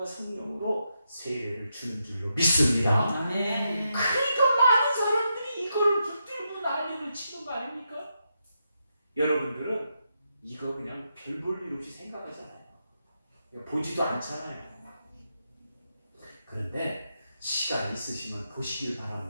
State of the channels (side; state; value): both; inverted; correlation -0.83